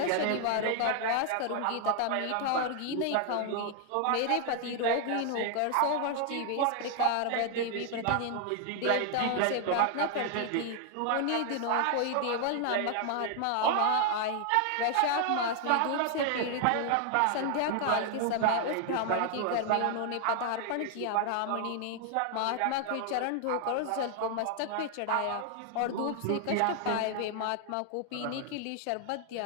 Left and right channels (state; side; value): different; both; correlation 0.00